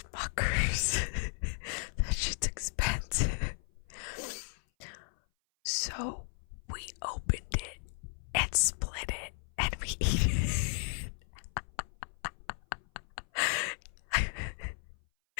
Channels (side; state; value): right; silent; 54 dB below the other